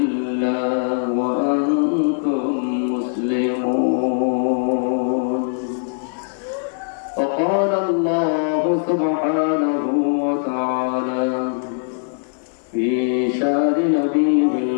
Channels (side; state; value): right; silent; 61 dB below the other